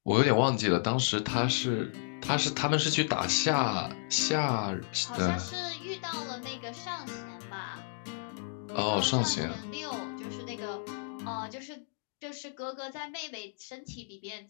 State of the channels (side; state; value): right; silent; digital silence